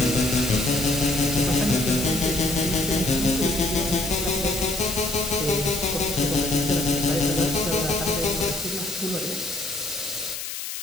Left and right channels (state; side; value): noise; left; hiss, 7 dB below the sound